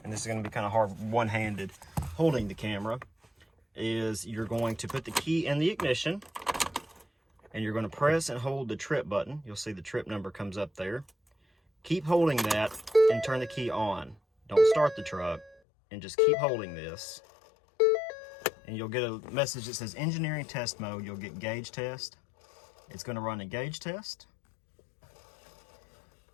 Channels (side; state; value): right; drops out; at 15.6 s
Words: and this is going to be kind of hard one-handed holding the camera, is you're going to put the key in the ignition and you're going to press and hold the trip button. You'll see the trip number comes up there. Keep holding that and turn the key on. Don't start the truck. And just keep holding this, and you'll get a message that says engineering test mode. You'll get gauge test. It's going to run a gauge test.